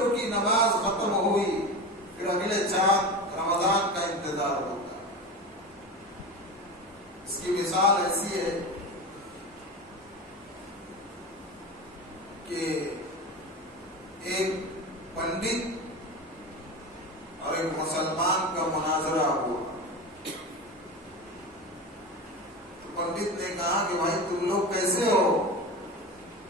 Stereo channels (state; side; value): normal; both; correlation 0.26